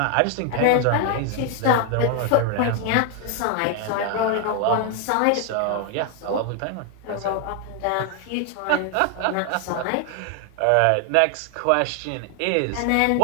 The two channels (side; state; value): both; different; correlation 0.00